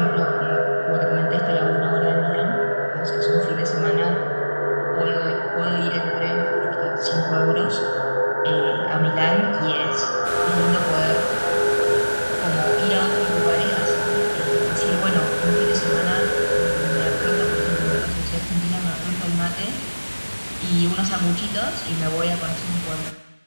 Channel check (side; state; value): both; inverted; correlation -1.00